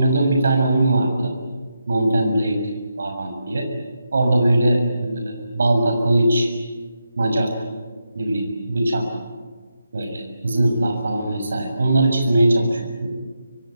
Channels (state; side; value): inverted; both; correlation -0.85